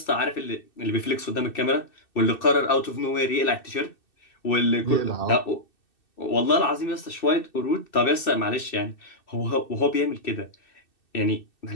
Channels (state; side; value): late; right; 2.6 ms